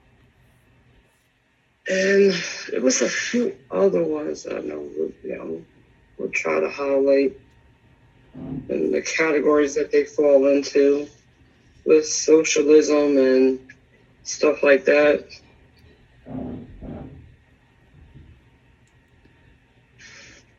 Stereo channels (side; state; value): both; identical; correlation 1.00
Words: and it was a few other ones I know. We'll try to highlight and the categories that they fall into with socialism and stuff like that.